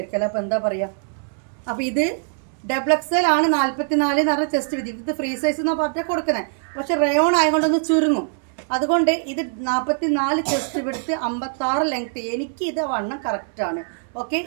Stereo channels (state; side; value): silent; left; 64 dB below the other